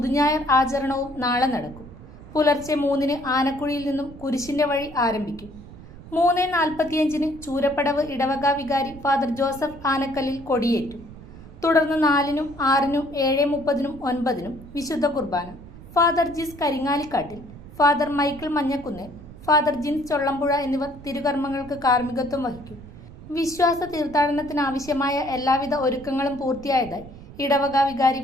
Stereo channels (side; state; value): right; noise; rumble, 17 dB below the sound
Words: ആചരണവും നാളെ നടക്കും. പുലർച്ചെ 3-ന് ആനക്കുഴിയിൽ നിന്നും കുരിശിന്റെ വഴി ആരംഭിക്കും. 3:45-ന് ചൂരപ്പടവ് ഇടവക വികാരി ഫാദർ ജോസഫ് ആനക്കല്ലിൽ കൊടിയേറ്റും. തുടർന്ന് 4-നും 6-നും 7:30-നും 9-നും വിശുദ്ധ കുർബാന. Father Jis Karingalikkattil, father Michael Manjakkunnel, father Jins Chollampuzha എന്നിവർ തിരുകർമ്മങ്ങൾക്ക് കാർമ്മികത്വം വഹിക്കും. വിശ്വാസ തീർത്ഥാടനത്തിനാവശ്യമായ എല്ലാവിധ ഒരുക്കങ്ങളും പൂർത്തിയായതായി ഇടവക വികാരി